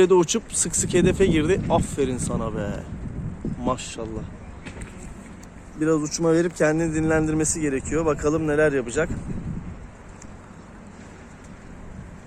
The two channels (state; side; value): identical; both; correlation 1.00